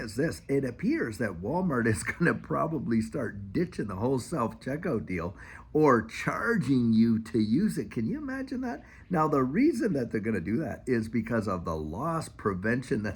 this, it appears that Walmart is going to probably start ditching the whole self checkout deal or charging you to use it. Can you imagine that? Now, the reason that they're going to do that is because of the loss prevention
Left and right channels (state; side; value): identical; both; correlation 1.00